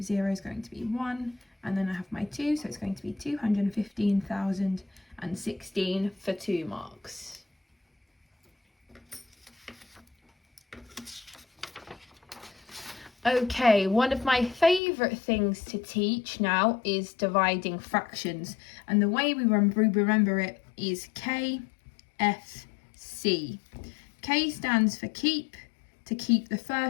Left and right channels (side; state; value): right; drops out; at 14.8 s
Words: is going to be 1, and then I have my 2, so it's going to be 215,016 for 2 marks. Okay, one of my favourite things to teach now is dividing fractions, and the way we remember it is KS2. K stands for keep, to keep the